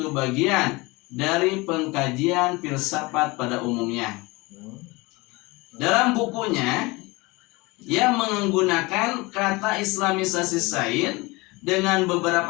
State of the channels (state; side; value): quieter; right; 23.8 dB